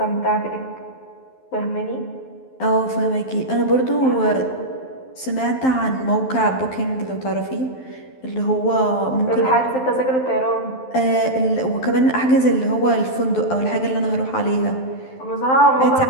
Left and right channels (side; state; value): right; late; 12 ms